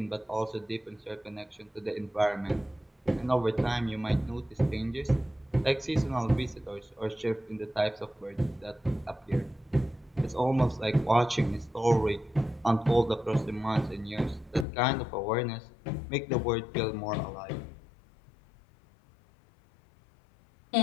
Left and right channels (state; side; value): drops out; right; at 14.7 s